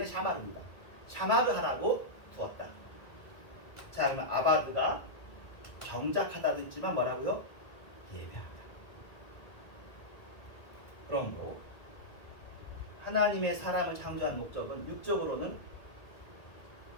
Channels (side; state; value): right; late; 1.9 ms